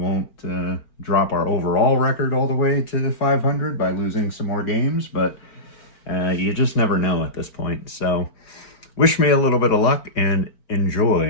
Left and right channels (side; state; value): right; late; 4.4 ms